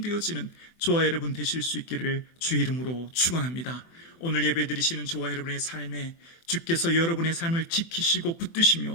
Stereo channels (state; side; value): late; right; 24 ms